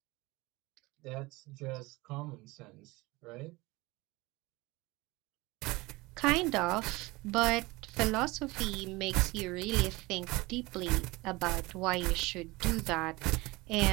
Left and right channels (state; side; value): quieter; left; 22.2 dB